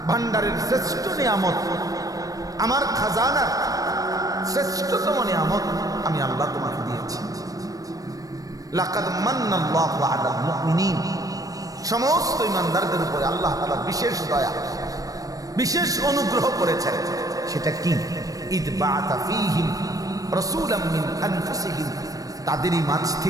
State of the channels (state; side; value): late; left; 0.17 ms